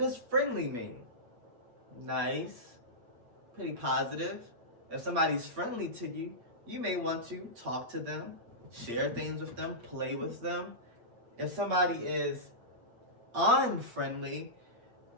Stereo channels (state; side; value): late; left; 8.6 ms